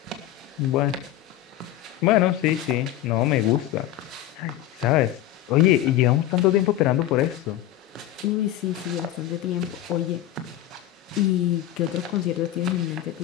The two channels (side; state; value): right; quieter; 12.9 dB